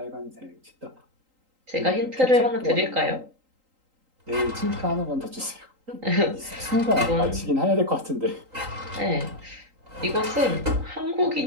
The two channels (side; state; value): left; late; 3.8 ms